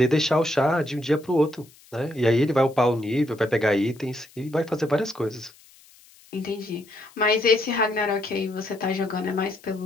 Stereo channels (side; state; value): left; noise; hiss, 26 dB below the sound